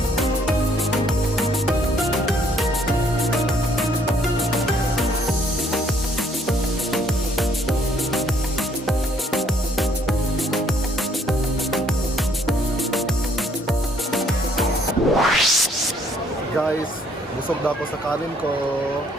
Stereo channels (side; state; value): both; normal; correlation 0.65